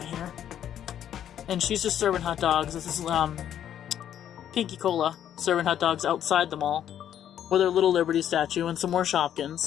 here. And she's just serving hot dogs. This is Pinky Cola serving hot dogs outside the mall with her little Liberty statue and some more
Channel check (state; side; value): quieter; right; 10.2 dB